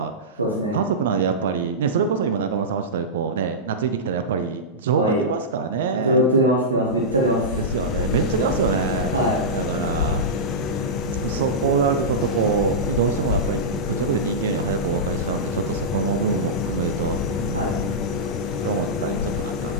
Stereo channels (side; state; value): both; normal; correlation -0.13